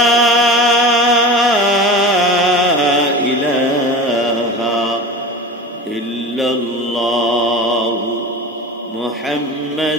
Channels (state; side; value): normal; both; correlation 0.32